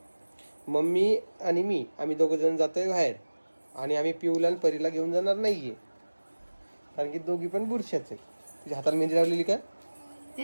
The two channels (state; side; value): inverted; both; correlation -1.00